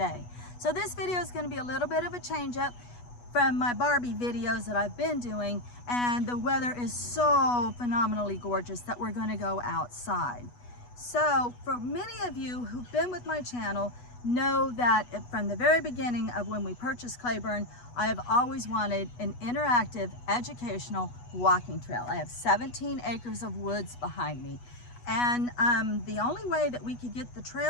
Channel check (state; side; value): late; right; 8.2 ms